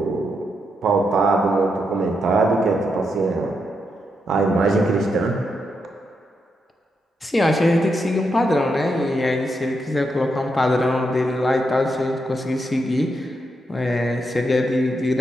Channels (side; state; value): both; normal; correlation 0.82